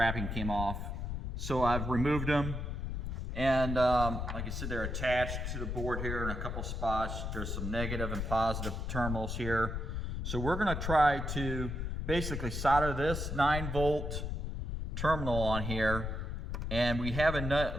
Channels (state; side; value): noise; left; rumble, 3 dB below the sound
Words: came off. So I've removed them, and like I said, they're attached to the board here in a couple spots. There's some negative and positive terminals here. So we're gonna try to basically solder this 9-volt terminal on here, and we have